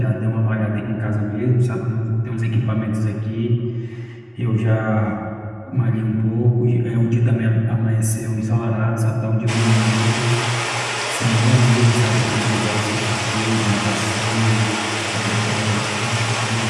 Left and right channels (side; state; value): both; identical; correlation 1.00